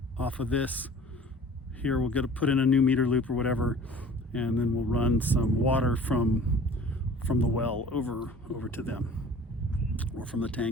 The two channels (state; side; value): normal; both; correlation 0.47